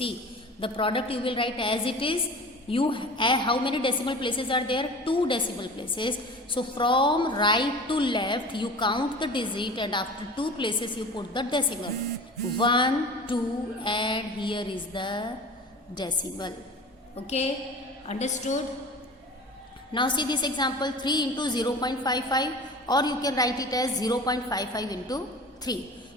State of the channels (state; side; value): normal; both; correlation 0.38